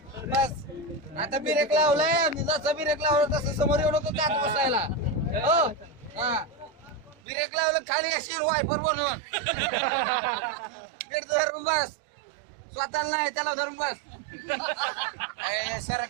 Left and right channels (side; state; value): left; drops out; at 7.2 s